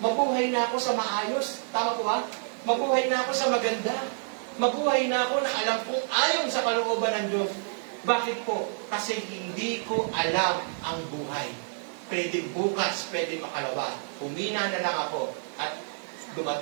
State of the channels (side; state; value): left; silent; 59 dB below the other